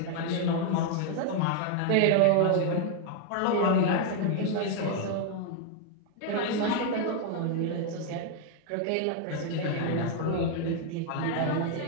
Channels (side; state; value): both; different; correlation 0.00